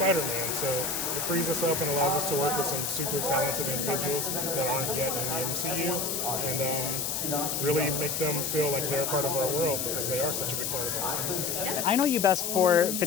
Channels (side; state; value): left; noise; hiss, 1 dB below the sound